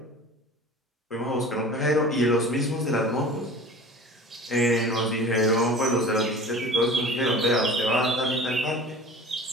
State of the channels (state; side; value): normal; both; correlation 0.40